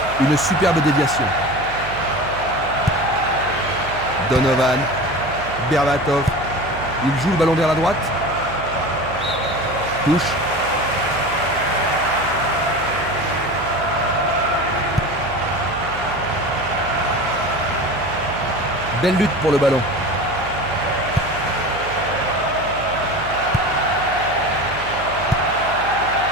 Une superbe déviation. Donovan. Berbatov. Il joue le ballon vers la droite. Touche. Belle lutte pour le ballon.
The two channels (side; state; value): right; noise; hum, 12 dB below the sound